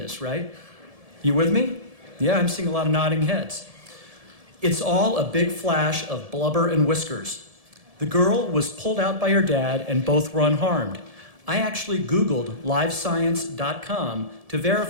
right? You with me? Yeah, I'm seeing a lot of nodding heads. It's all a big flash of blubber and whiskers. The girl was pulled out by her dad, and both were unharmed. I actually Googled livescience.com to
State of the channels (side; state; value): left; late; 1.7 ms